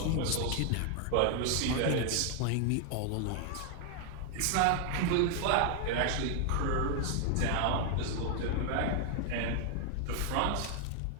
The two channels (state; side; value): different; both; correlation 0.00